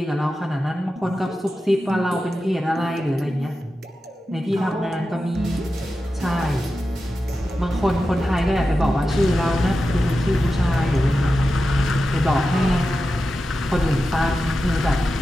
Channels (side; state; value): both; normal; correlation 0.91